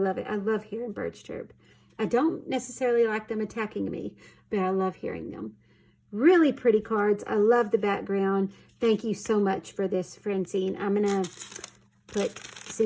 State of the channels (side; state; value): both; identical; correlation 1.00